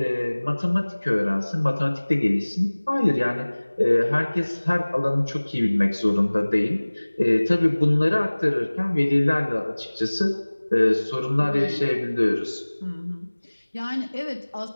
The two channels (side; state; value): both; inverted; correlation -1.00